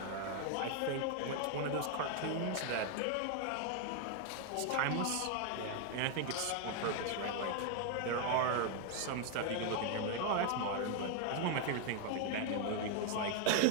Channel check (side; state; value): both; different; correlation 0.00